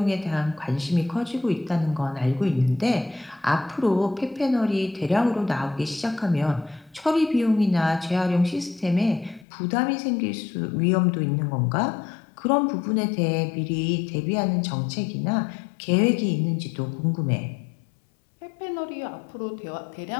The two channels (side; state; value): right; drops out; at 9.5 s